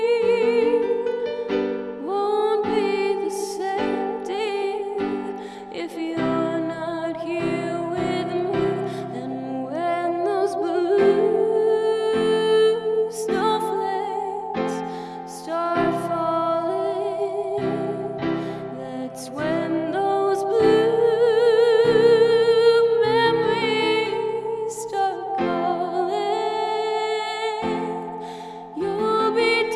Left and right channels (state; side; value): identical; both; correlation 1.00